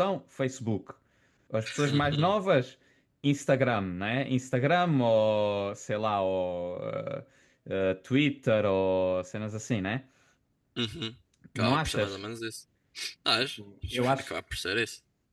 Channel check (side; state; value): both; identical; correlation 1.00